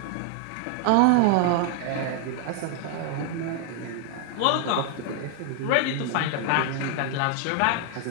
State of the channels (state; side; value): different; both; correlation 0.00